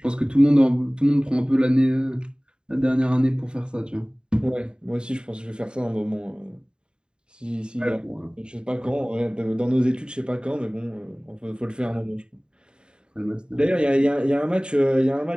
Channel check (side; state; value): left; late; 0.049 ms